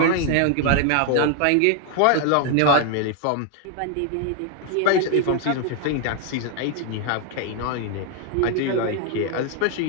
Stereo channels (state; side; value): different; both; correlation 0.00